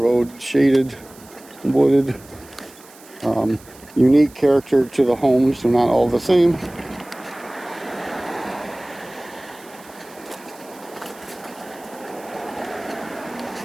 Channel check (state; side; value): noise; right; hiss, 23 dB below the sound